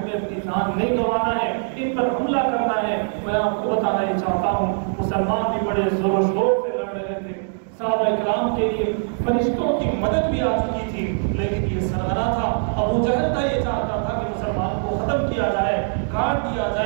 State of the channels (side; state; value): left; silent; 64 dB below the other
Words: اپنی جان نہیں گنوانا ہے، ان پر حملہ کرنا ہے۔ میں آپ کو بتانا ہی چاہتا ہوں، مسلمان بھی بڑے زور و شور سے لڑ رہے تھے، صحابہ اکرام کے لیے فرشتوں کی مدد بھی آ چکی تھی، لیکن یہ سرغنہ تھا، ابو جہل کا یہ چاہتا تھا کہ مسلمان کو ختم کیا جائے، کاٹ دیا